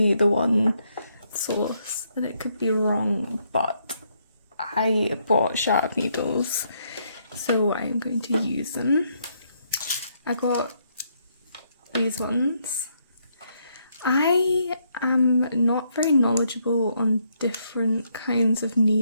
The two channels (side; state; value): both; inverted; correlation -0.74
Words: the one source and it could be wrong, but I bought sharp needles, so I'm going to use them. I got these ones. I am not very knowledgeable on different kinds of